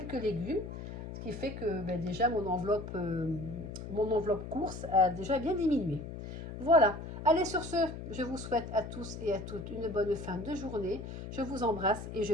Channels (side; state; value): left; noise; hum, 9 dB below the sound